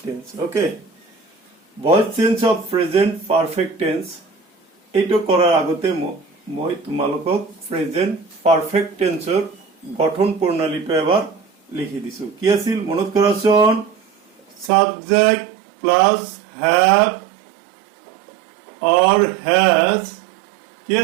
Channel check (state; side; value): drops out; left; at 14.7 s